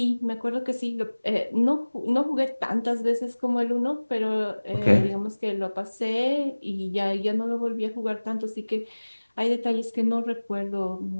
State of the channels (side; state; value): both; inverted; correlation -1.00